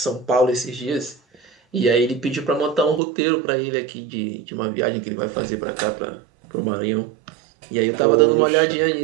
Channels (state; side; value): drops out; left; at 3.0 s